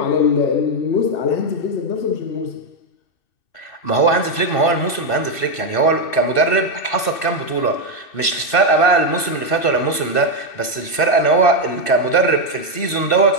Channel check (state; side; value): late; right; 2.6 ms